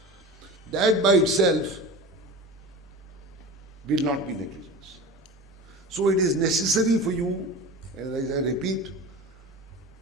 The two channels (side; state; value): both; normal; correlation 0.32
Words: that by itself will not be negligence. So it is necessary for you, and as I repeat,